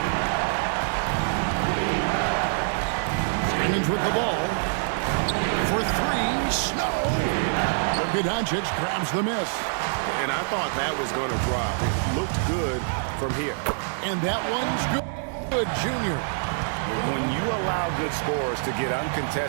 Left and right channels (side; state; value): left; silent; digital silence